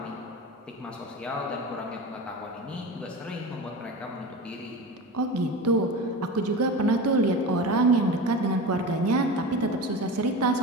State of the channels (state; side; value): normal; both; correlation 0.28